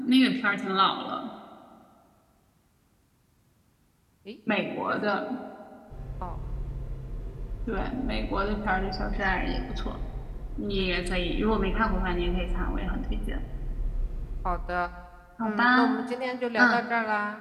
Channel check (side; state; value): both; identical; correlation 1.00